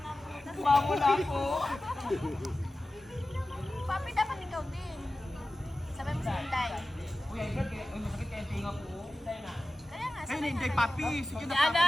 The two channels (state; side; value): normal; both; correlation 0.95